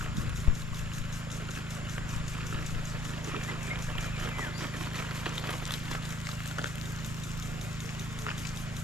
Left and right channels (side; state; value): both; normal; correlation 0.60